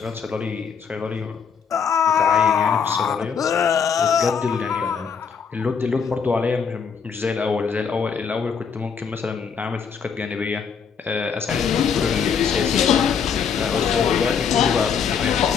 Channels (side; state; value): right; quieter; 6.5 dB